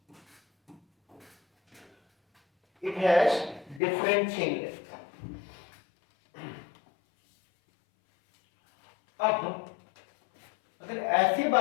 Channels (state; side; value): drops out; right; at 3.8 s